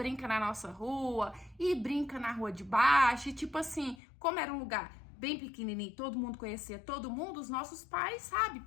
na nossa rua, e brinca na rua de baixo. E tipo assim, como era um lugar bem pequenininho, todo mundo conhecia todo mundo, os nossos pais, sabe?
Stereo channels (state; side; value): drops out; right; at 4.0 s